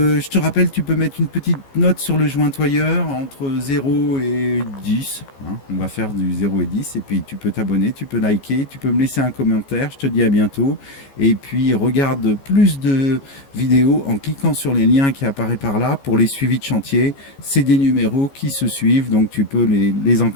te rappelle, tu peux mettre une petite note sur le jointoyeur entre 0 et 10. Hein. On va faire du 0 et 10, et puis tu peux t'abonner, tu peux liker, tu peux me laisser un commentaire. Je te dis à bientôt. Et puis regarde plus de vidéos en cliquant sur les liens qui apparaissent par là pour les suivis de chantier. C'est des numéros qui se suivent, donc tu peux les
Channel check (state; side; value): late; right; 15 ms